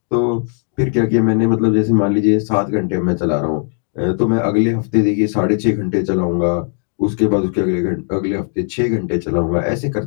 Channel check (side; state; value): right; silent; 57 dB below the other